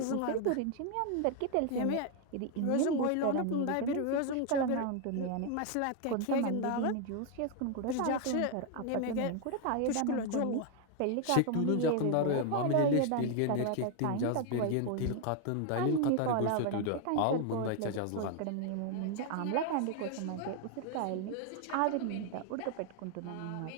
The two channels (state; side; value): different; both; correlation 0.01